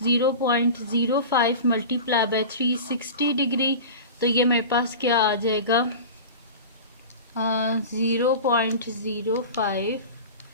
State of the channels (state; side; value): inverted; both; correlation -0.32